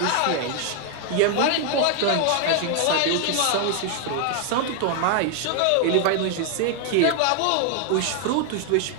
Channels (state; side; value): different; both; correlation 0.00